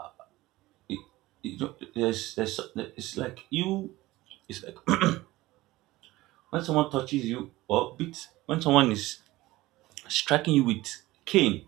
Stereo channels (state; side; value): quieter; left; 18.4 dB